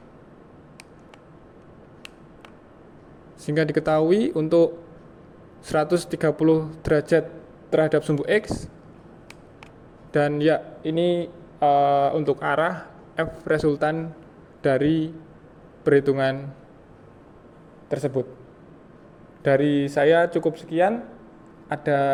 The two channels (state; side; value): identical; both; correlation 1.00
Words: sehingga diketahui untuk 130 derajat terhadap sumbu X, dan ya ini untuk arah F resultan dari perhitungan tersebut. Dari saya cukup sekian.